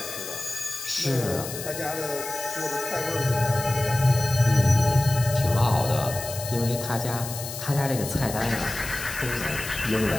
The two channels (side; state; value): left; noise; hiss, 9 dB below the sound